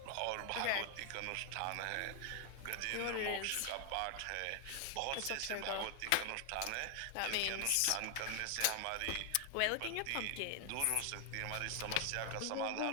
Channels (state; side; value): different; both; correlation 0.00